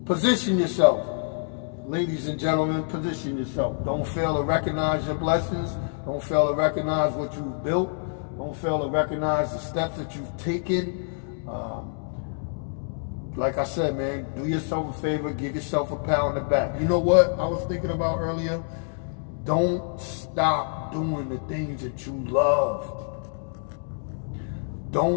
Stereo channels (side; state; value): right; silent; digital silence